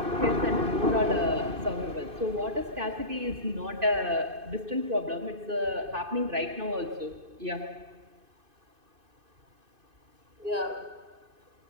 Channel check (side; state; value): left; late; 2.5 ms